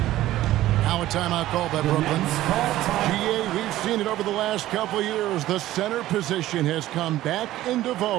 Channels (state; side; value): quieter; left; 14.9 dB